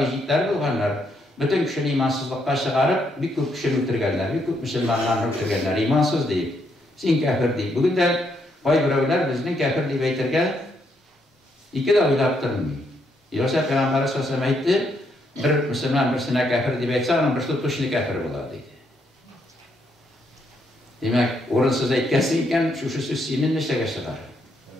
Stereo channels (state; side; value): normal; both; correlation 0.75